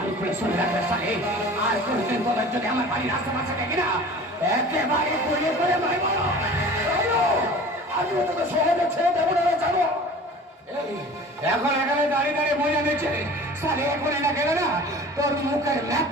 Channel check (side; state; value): both; normal; correlation 0.41